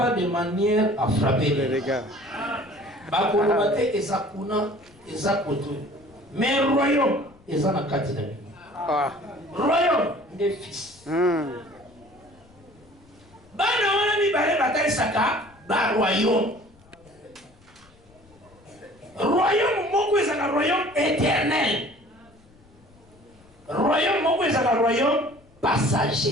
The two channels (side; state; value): left; noise; rumble, 28 dB below the sound